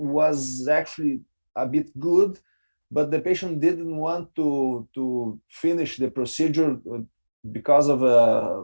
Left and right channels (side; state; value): both; inverted; correlation -1.00